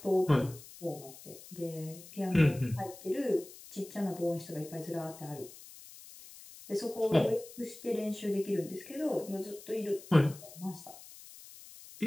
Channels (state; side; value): noise; left; hiss, 18 dB below the sound